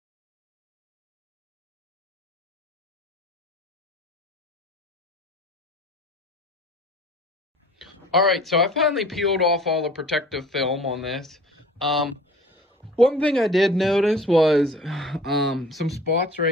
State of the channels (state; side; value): normal; both; correlation 0.46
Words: All right, so I finally peeled off all the protective film on this. One thing I did notice was some spots